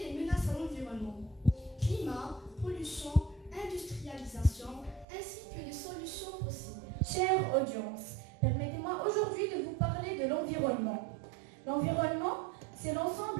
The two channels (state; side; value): drops out; left; at 5.1 s